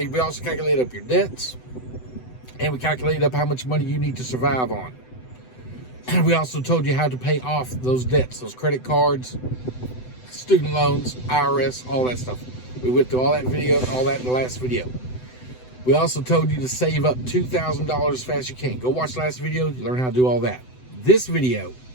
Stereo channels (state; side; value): late; right; 7.9 ms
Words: also calculate up your debts, and we calculated up how much money you need to survive on. And we also told you how to pay off those debts, those credit cards, student loans, IRS, all that stuff. We went through all that in the last video. We also told you to save up $2,000 as fast as you can. Go watch the last video, you learn how to do all that. This video